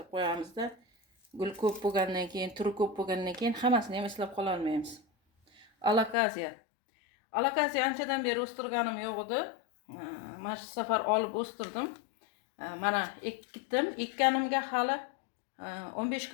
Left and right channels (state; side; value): drops out; right; at 6.2 s